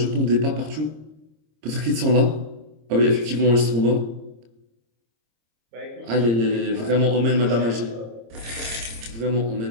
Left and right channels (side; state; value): left; late; 26 ms